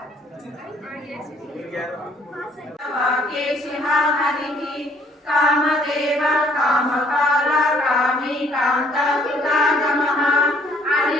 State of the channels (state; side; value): normal; both; correlation 0.62